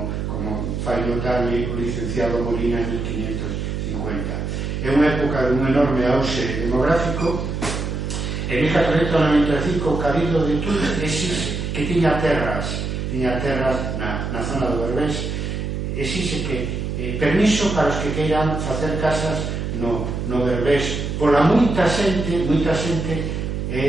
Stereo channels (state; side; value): noise; right; hum, 3 dB below the sound